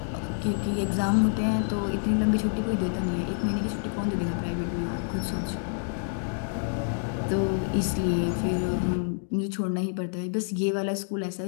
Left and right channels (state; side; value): silent; right; digital silence